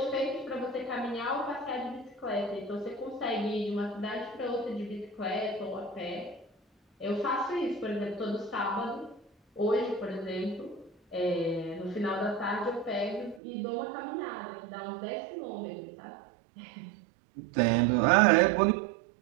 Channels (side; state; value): left; drops out; at 13.4 s